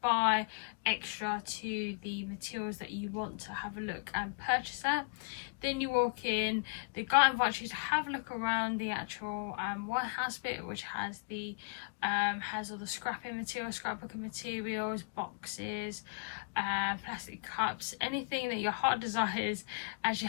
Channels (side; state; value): right; quieter; 37.4 dB